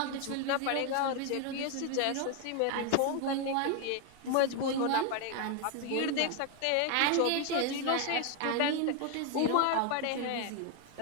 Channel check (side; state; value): both; different; correlation 0.01